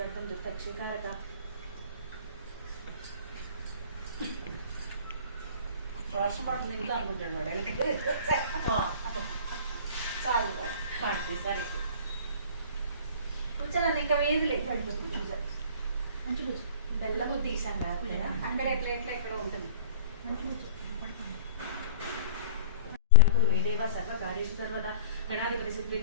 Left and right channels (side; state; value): both; inverted; correlation -0.42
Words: दुर्दक्षिकारका చాలు పాడితే సరే కూర్చోండి ఇంకా వేది లేదు బెల్లం తీసాం కదా అక్కడ ప్లేట్లో ఎక్కడ ఉంటుంది मे देव सर्वकार्येषु सर्वदा गणाधिपति